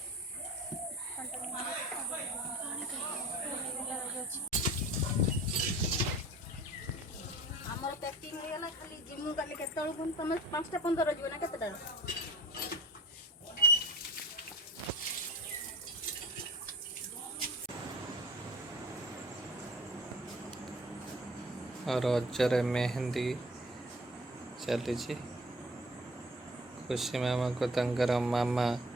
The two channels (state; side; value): normal; both; correlation 0.44